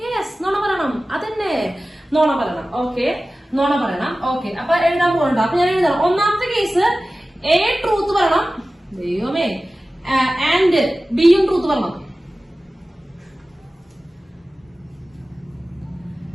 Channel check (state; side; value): normal; both; correlation 0.96